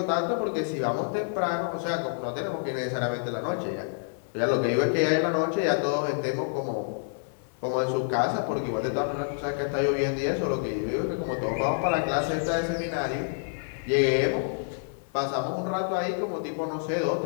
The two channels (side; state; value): right; silent; digital silence